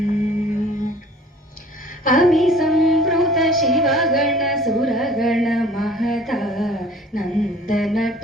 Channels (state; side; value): normal; both; correlation 0.50